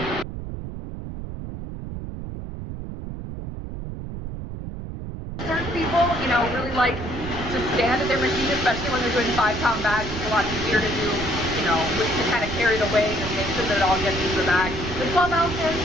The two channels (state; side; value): noise; right; rumble, 8 dB below the sound